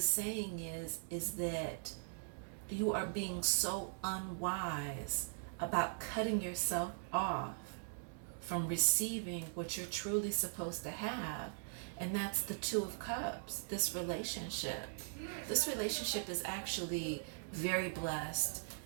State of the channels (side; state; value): left; silent; digital silence